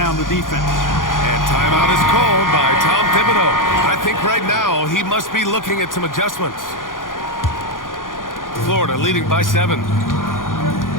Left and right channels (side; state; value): right; late; 0.90 ms